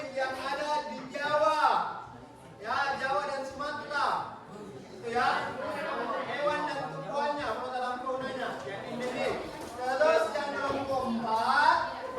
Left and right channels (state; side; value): identical; both; correlation 1.00